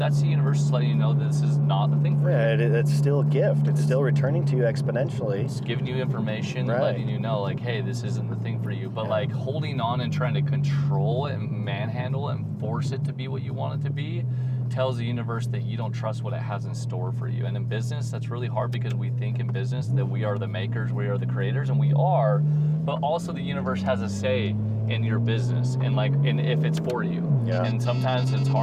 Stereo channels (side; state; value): both; identical; correlation 1.00